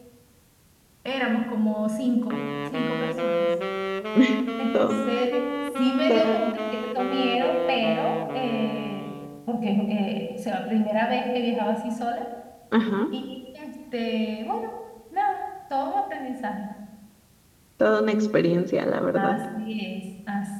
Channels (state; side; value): identical; both; correlation 1.00